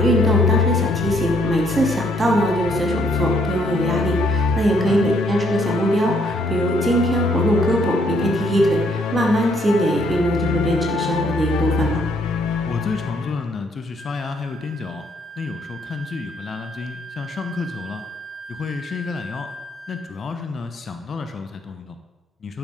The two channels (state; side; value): normal; both; correlation 0.69